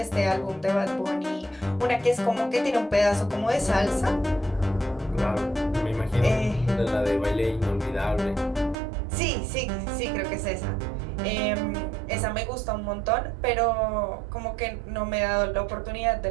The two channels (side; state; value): left; drops out; at 8.8 s